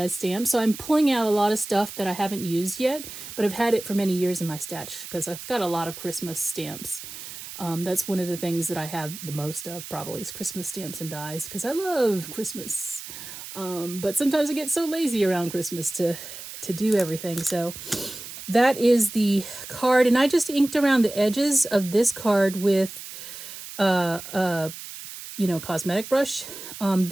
Stamps. So I'm pulling out a lot of stuff that I haven't used yet, but I've had it for many years in my stash because I've got a lot of Christmas stamps. That's one of the things that I have the most of probably is Christmas stamps and dies because I love Christmas. But sometimes I get so lazy around Christmas to do everything. So that is the card. And I just inked around the edges of this card with, cosmetic brush.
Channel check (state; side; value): noise; right; hiss, 12 dB below the sound